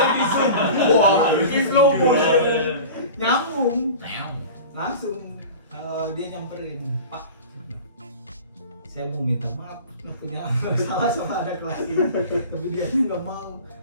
Nyambung. Langsung dia nyamperin, Pak. Saya mau minta maaf, punya salah sama anak kelas ini, tapi dia nggak mau.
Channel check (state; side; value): inverted; both; correlation -0.36